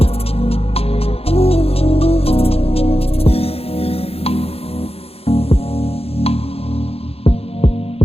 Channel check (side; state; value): right; late; 0.29 ms